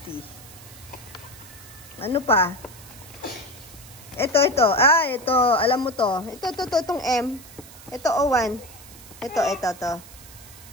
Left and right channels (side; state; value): right; noise; hiss, 19 dB below the sound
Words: Ano pa? Ito. Ito. Alam mo to. Itong M. Ito, O1. Ito.